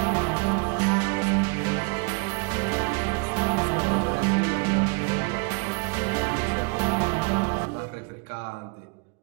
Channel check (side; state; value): left; quieter; 34.0 dB